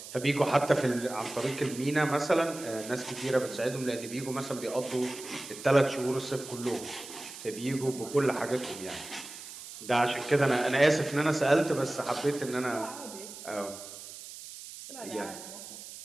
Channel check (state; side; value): noise; right; hiss, 13 dB below the sound